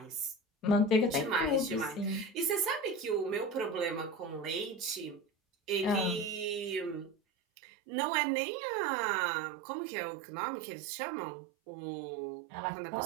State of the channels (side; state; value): left; drops out; at 7.2 s